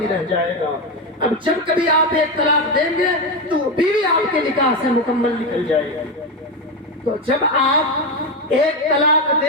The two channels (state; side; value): normal; both; correlation 0.12